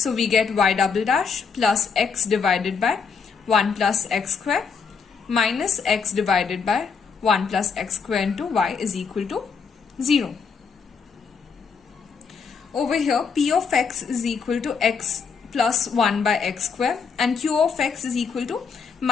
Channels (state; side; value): quieter; right; 5.8 dB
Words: we get y double dash plus x divided by 1 plus x square minus x divided by 1 plus x square into y is equal to 0. Over here, p of x is equal to x plus 1 by x square and q of x is equal to